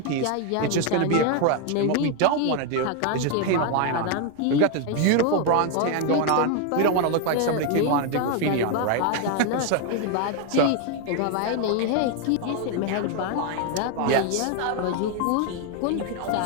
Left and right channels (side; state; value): both; different; correlation 0.01